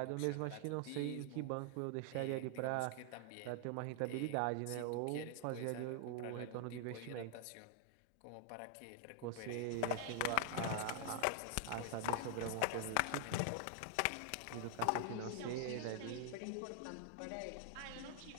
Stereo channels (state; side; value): different; both; correlation 0.00